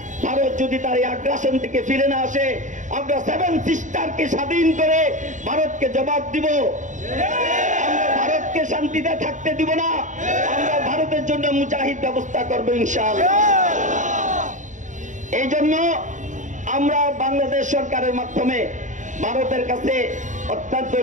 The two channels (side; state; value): left; late; 0.36 ms